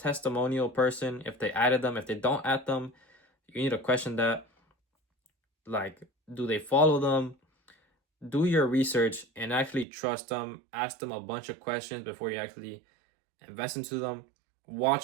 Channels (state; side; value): drops out; left; at 9.9 s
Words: person if they added them. If they don't add them, you need to question that. Like, do they follow them? Do your research and actually trust them. Ask them a bunch of questions before you actually invest into them.